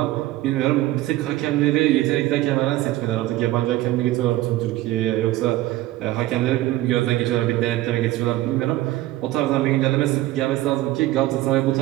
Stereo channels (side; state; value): left; quieter; 16.2 dB